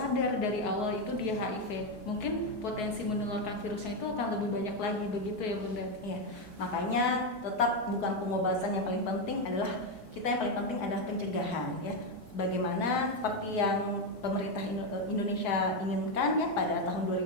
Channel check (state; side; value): normal; both; correlation 0.07